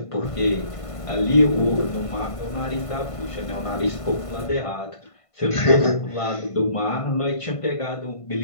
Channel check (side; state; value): right; late; 1.5 ms